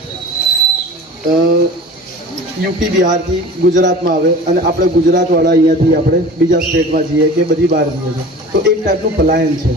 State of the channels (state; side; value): normal; both; correlation 0.39